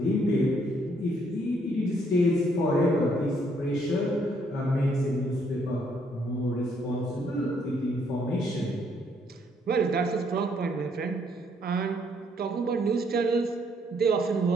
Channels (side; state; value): both; normal; correlation 0.69